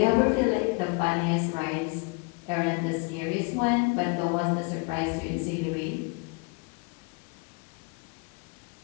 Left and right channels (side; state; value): right; quieter; 30.9 dB